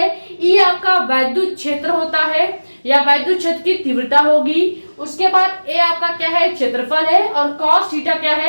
ई आपका वैद्युत क्षेत्र होता है या वैद्युत क्षेत्र की तीव्रता होगी। उसके बाद ए आपका क्या है, क्षेत्रफल है, और कॉस थीटा क्या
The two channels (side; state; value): both; inverted; correlation -1.00